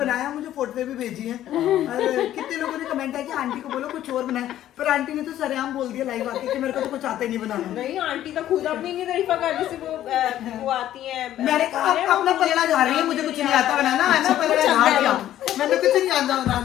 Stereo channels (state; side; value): quieter; right; 12.5 dB